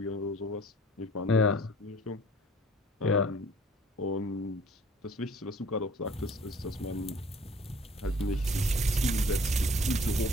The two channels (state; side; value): normal; both; correlation 0.52